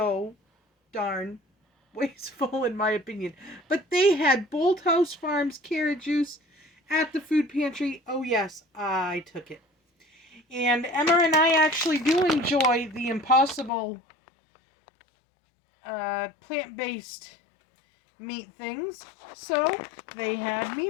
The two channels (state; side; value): drops out; right; at 13.7 s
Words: darn wasteful in my opinion. But they had Bolthouse Farms carrot juice at the food pantry. Oh yes, I took it. And Emma and I actually do enjoy the Impossible plant-based meat things. So they had